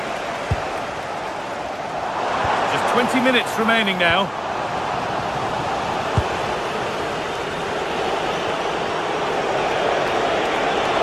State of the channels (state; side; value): identical; both; correlation 1.00